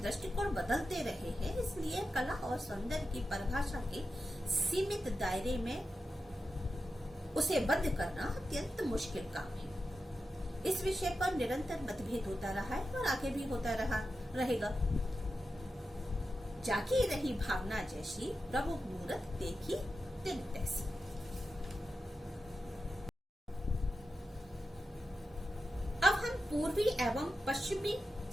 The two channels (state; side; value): normal; both; correlation 0.91